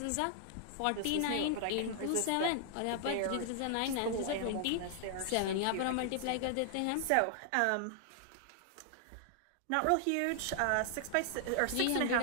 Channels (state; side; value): different; both; correlation 0.00